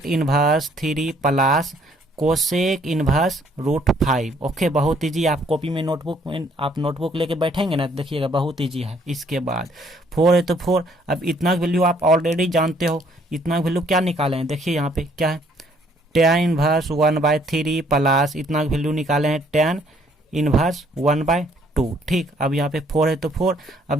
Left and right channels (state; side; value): normal; both; correlation 0.64